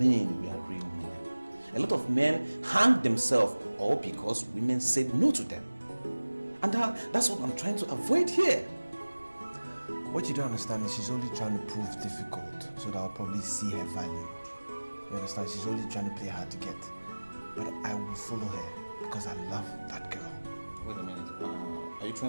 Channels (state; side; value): inverted; both; correlation -1.00